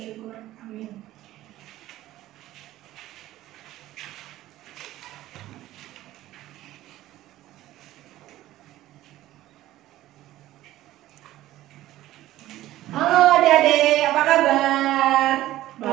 Amin. Halo adik-adik, apa kabar?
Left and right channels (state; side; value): quieter; left; 15.0 dB